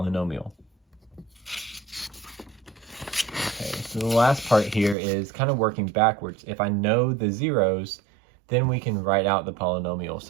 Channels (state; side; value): drops out; left; at 5.0 s